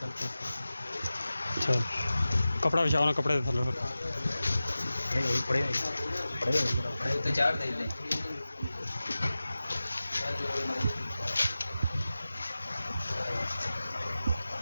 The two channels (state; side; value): inverted; both; correlation -0.96